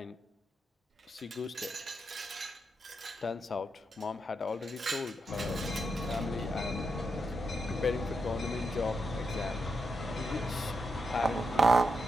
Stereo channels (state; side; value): normal; both; correlation 0.84